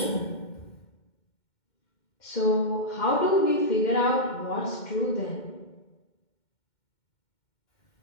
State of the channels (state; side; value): late; right; 2.1 ms